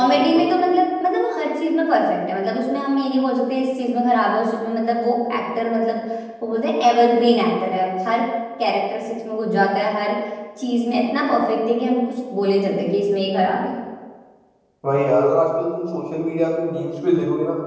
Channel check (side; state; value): both; identical; correlation 1.00